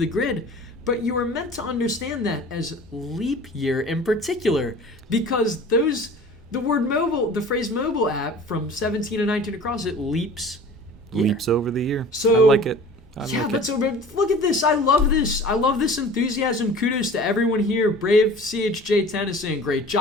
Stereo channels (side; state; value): both; normal; correlation 0.43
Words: grid. But you are meant to understand that as leap year in particular, because the word mobile, the phrase mobile app from 17 and 19 across, it leaps year. Leaps over the year. So I like it. Look at this. I love this. I love this enthusiasm. Kudos to everyone here. Brave CHJ Tennyson. Great